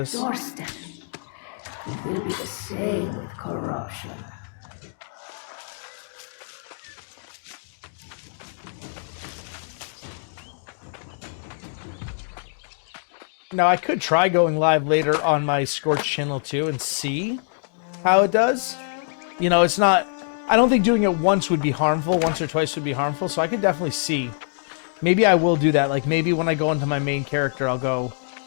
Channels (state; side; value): silent; right; 62 dB below the other